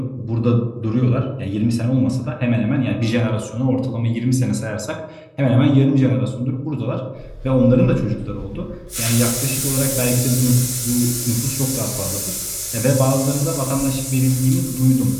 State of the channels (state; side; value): identical; both; correlation 1.00